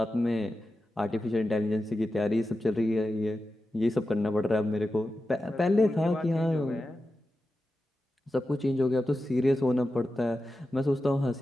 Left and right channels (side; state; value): both; normal; correlation 0.92